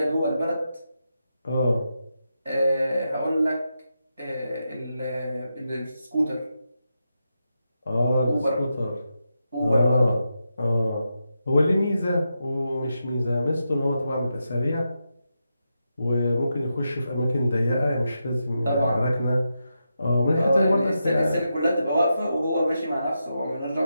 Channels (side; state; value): both; inverted; correlation -0.87